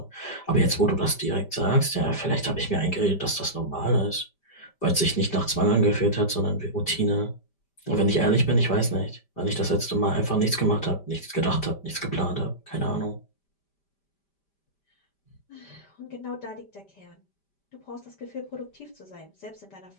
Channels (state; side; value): late; right; 5.1 ms